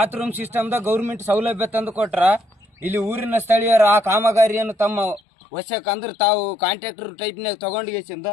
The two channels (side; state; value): right; drops out; at 5.2 s